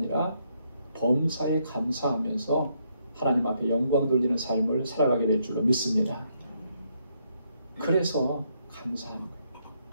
범사에 감사하면서 하나님 앞에 영광 돌리는 삶을 살아가게 될 줄로 믿습니다. 그래서 감사합니다.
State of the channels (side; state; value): both; inverted; correlation -0.75